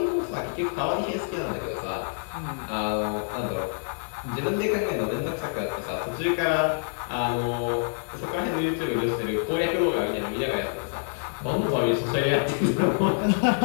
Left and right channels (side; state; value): right; silent; digital silence